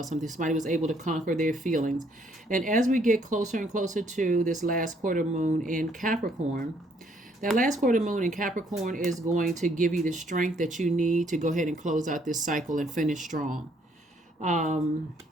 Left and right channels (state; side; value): normal; both; correlation 0.67